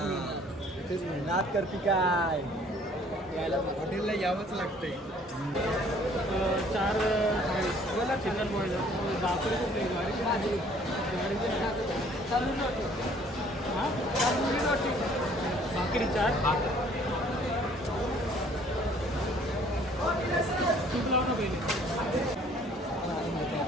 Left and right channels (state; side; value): normal; both; correlation 0.57